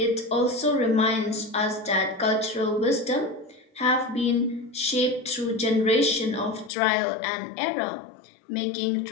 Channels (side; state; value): right; drops out; at 6.7 s